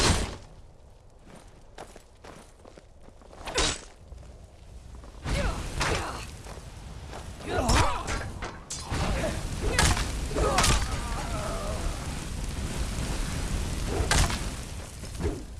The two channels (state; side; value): identical; both; correlation 1.00